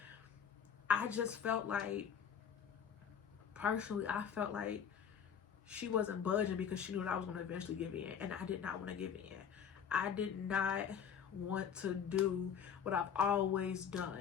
I just felt like, personally, I felt like she wasn't budging because she knew that I was going to eventually give in, and I did not want to give in. I did not want to do what I've always done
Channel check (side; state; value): right; quieter; 7.7 dB